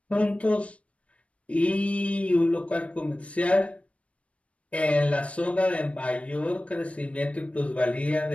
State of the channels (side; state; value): right; late; 0.063 ms